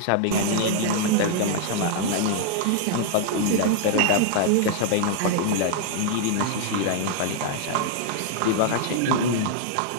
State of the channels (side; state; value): both; different; correlation 0.00